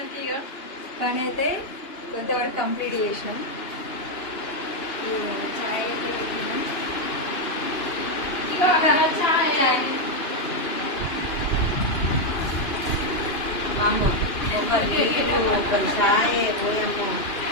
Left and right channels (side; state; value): right; late; 2.9 ms